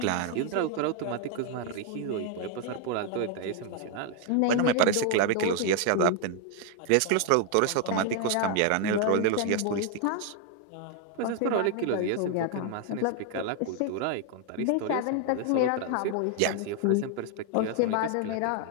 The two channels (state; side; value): different; both; correlation 0.01